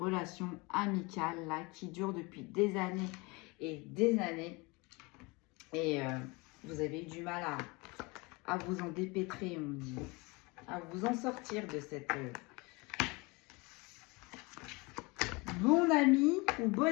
amicale là qui dure depuis des années et des années. Et vous avez eu du mal à vous en dépêtrer, on dit. À vous en sortir de bon ami ou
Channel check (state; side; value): quieter; right; 26.3 dB